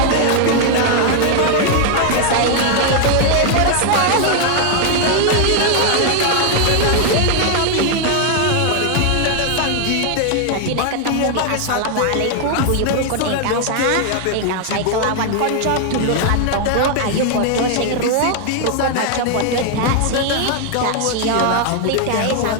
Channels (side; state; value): both; different; correlation 0.00